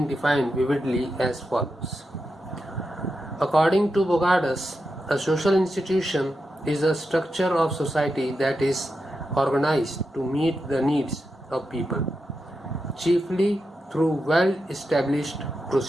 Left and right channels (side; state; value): both; normal; correlation 0.88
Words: defined vividly as follows. According to Bogadas, a social institution is a structure of society that is organized to meet the needs of people, chiefly through well-established